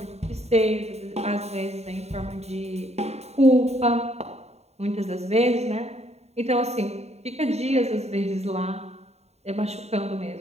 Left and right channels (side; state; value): left; late; 0.31 ms